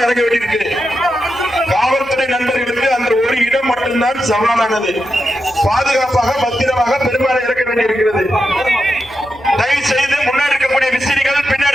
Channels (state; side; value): noise; left; hum, 27 dB below the sound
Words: இறங்க வேண்டியிருக்கு. காவல்துறை நண்பர்களுக்கு அந்த ஒரு இடம் மட்டும்தான் சவாலானது. பாதுகாப்பாக பத்திரமாக பெரும்பாலும் இறக்க வேண்டியிருக்கிறது. தயவு செய்து முன்னாடி இருக்கக்கூடிய விசிறிகள்,